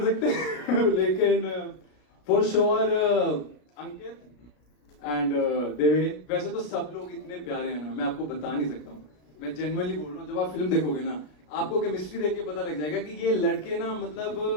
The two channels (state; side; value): late; right; 33 ms